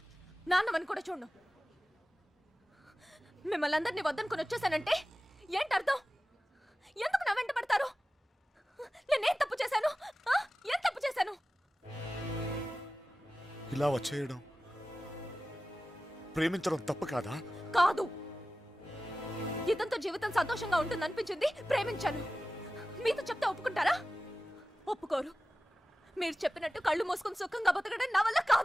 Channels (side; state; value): both; normal; correlation 0.96